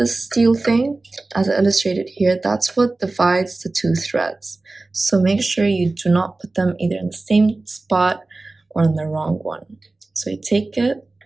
steel thing, as illustrated here, that's what divides the 2 threads. So make sure you do not put them either in the same spot or in the wrong one. So you take it,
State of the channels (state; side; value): quieter; left; 3.2 dB